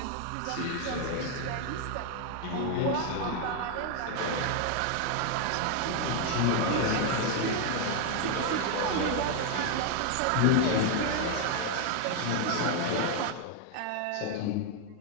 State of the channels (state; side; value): different; both; correlation 0.00